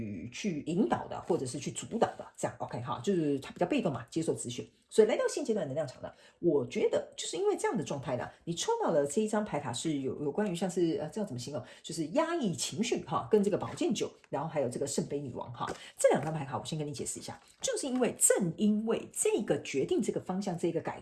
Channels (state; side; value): identical; both; correlation 1.00